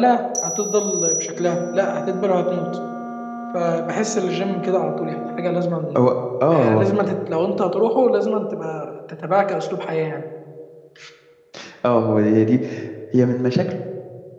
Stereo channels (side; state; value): both; identical; correlation 1.00